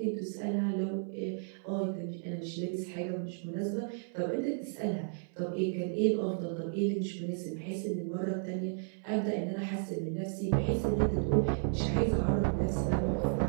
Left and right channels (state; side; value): silent; left; 56 dB below the other